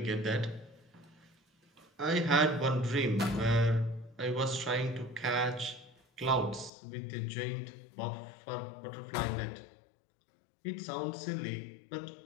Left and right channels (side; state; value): right; drops out; at 6.7 s